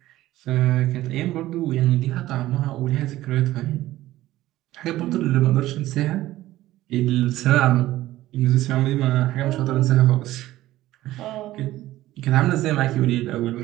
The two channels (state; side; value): quieter; left; 15.5 dB